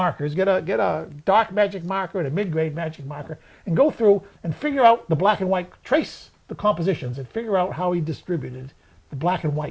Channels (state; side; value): identical; both; correlation 1.00